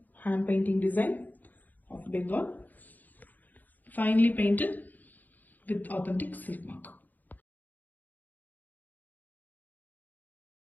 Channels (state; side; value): late; right; 0.083 ms